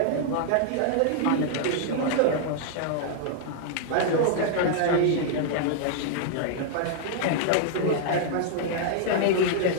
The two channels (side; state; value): both; different; correlation -0.01